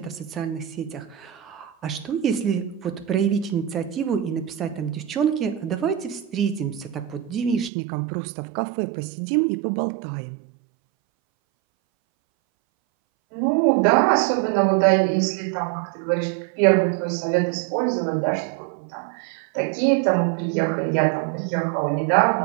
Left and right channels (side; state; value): left; drops out; at 7.7 s